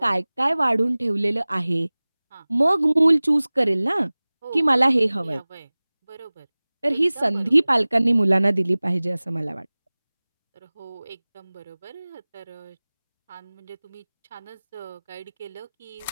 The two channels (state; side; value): inverted; both; correlation -1.00